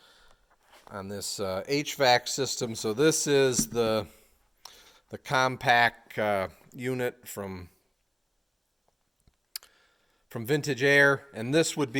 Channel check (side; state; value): both; identical; correlation 1.00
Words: this HVAC system. So this is the compact unit from Vintage Air, and this would